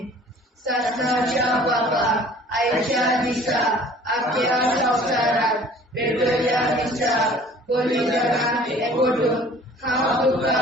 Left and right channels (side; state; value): both; normal; correlation 0.50